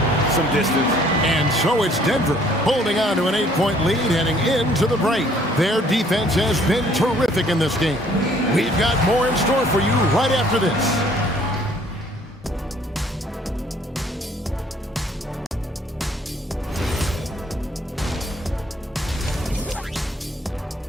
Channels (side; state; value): both; normal; correlation 0.60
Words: some distance. And so it's Denver holding on to an 8-point lead heading into the break. Their defense has been terrific in this game. We've got more in store for you right after this.